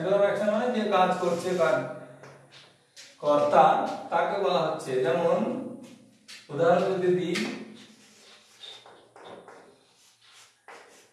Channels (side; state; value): both; identical; correlation 1.00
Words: মানে যে কাজ করছে কর্তা তাকে বলা হচ্ছে। যেমন উদাহরণ যদি দিই,